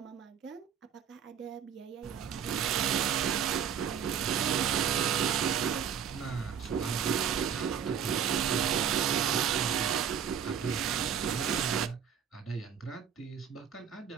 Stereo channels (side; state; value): left; quieter; 8.1 dB